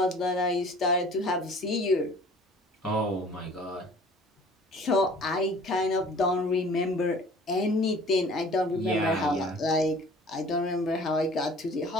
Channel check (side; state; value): both; normal; correlation 0.49